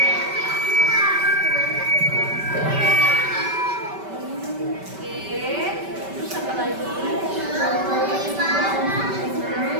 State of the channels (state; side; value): late; left; 5.2 ms